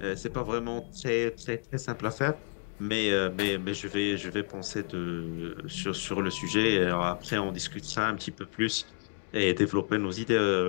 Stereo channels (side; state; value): right; silent; digital silence